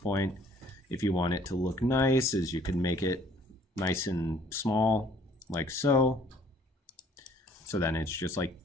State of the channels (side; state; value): both; normal; correlation 0.58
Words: if you want it to look nice, is you can make it nice and small, like so. So then it's just like,